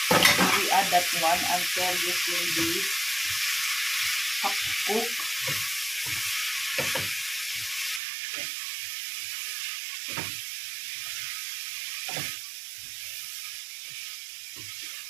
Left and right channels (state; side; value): drops out; left; at 8.0 s